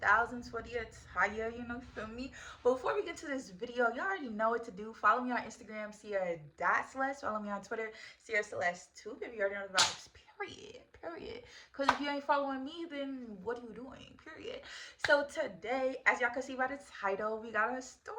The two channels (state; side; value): identical; both; correlation 1.00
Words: for the attire, feel me? But before we get to this video, y'all already know what to do. Follow me on Instagram, Ciara.Celeste. Follow me on Twitter, Ciara Celeste 2, if you already know the vibes. Period. Because if you ain't following me, then what are you doing? Period. So today, as y'all can see by the title, we got a story